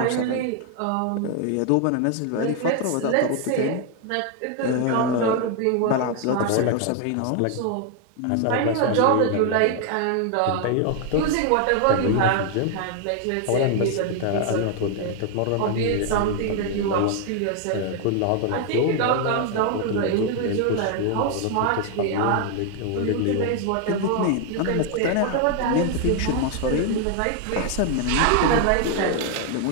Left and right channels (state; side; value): different; both; correlation 0.00